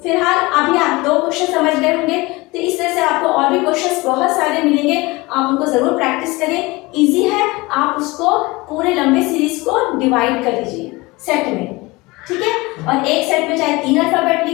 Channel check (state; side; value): quieter; right; 22.9 dB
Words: फिलहाल अभी आप 2 क्वेश्चन समझ गए होंगे, तो इस तरह से आपको और भी क्वेश्चंस बहुत सारे मिलेंगे, आप उनको जरूर प्रैक्टिस करें। इजी है, आप उसको पूरे लंबे सीरीज को डिवाइड कर लीजिए सेट में, ठीक है। और एक सेट में चाहे 3 अल्फाबेट